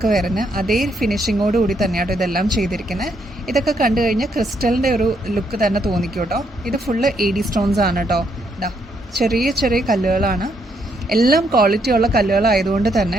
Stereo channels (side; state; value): both; normal; correlation 0.74